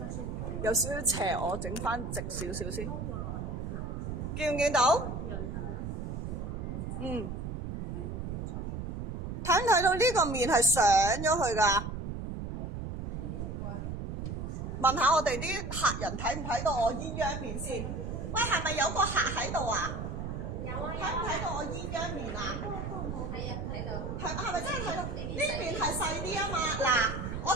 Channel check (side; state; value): right; noise; rumble, 5 dB below the sound